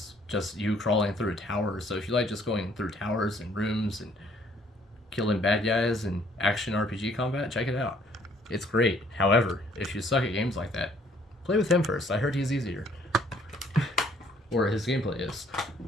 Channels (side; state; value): both; normal; correlation 0.62